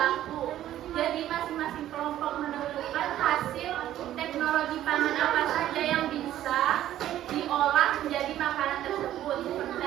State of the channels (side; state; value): left; quieter; 12.6 dB